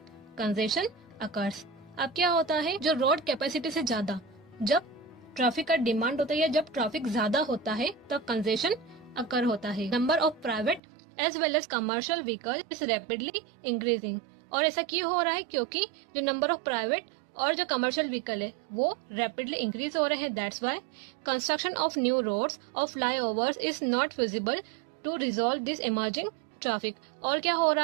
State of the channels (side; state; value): left; drops out; at 10.8 s